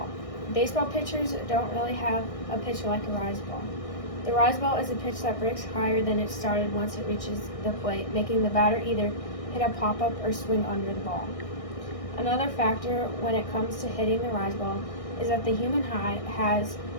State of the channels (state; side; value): late; right; 1.6 ms